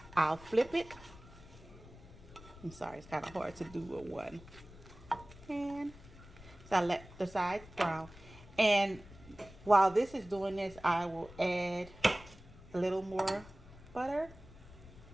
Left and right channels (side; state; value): left; noise; rumble, 19 dB below the sound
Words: I'll flip it. I'm sorry, it's kind of hard to do with one hand. So I let the sides brown. And while this is doing this, I will add a little more butter